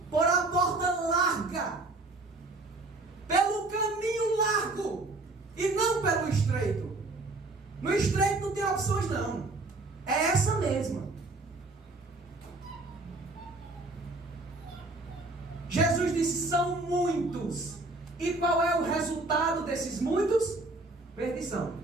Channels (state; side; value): quieter; left; 3.1 dB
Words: por a porta larga, pelo caminho largo, e não pelo estreito. No estreito não tem opções não, é essa mesma. Jesus disse: são muitos. E qual é o resultado desses muitos? Perdição.